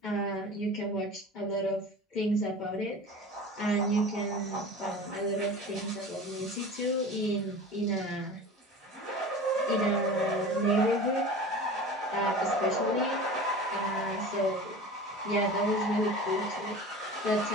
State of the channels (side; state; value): both; normal; correlation 0.36